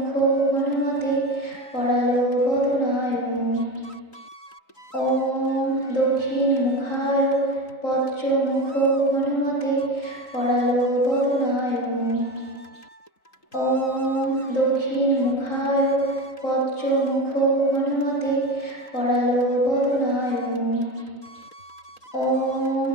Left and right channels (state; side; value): late; right; 3.8 ms